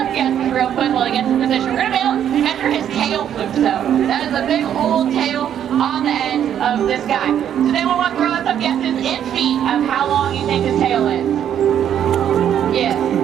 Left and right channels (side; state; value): left; quieter; 9.7 dB